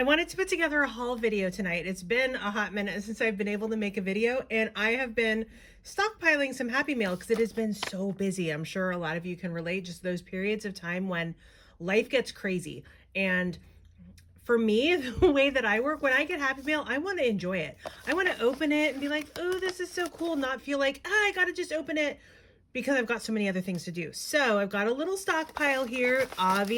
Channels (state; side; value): identical; both; correlation 1.00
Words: wanted to put together a haul video tonight. It's been a hot minute since I've been able to make a video, and I have been stockpiling some Happy Mail because it has been so busy. I'm sure a lot of you can relate, just those periods of time when life gets crazy. And for me, the way that I work, when I get Happy Mail, I want to enjoy it. I want to open it and be like, oh, this is so cool, not feel like, I gotta just open it, because I've got so many other things to do. So I've got a little stockpile here.